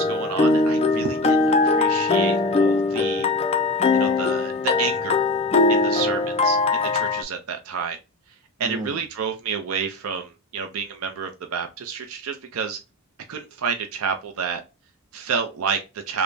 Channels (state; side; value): normal; both; correlation 0.23